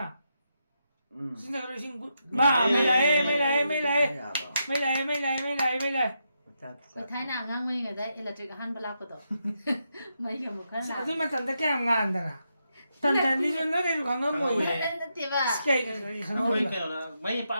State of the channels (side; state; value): both; inverted; correlation -0.83